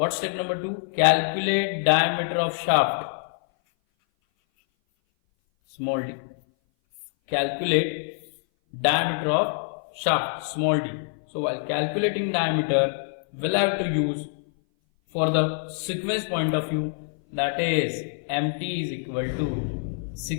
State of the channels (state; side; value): silent; right; 57 dB below the other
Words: step number 2? Calculate diameter of shaft, small d. Calculate diameter of shaft, small d. So while calculating diameter, we'll have to use, for the sequence point of view, that is MT is equal to